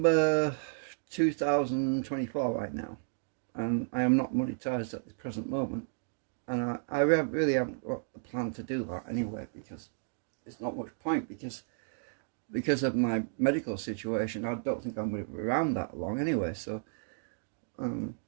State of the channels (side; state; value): left; silent; digital silence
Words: 2024 right now, and I am not monetized at the present moment. And I really haven't got a plan to do that anyway, because it's not much point, because of my medical situation. I don't think I'm going to be around that long anyway. So,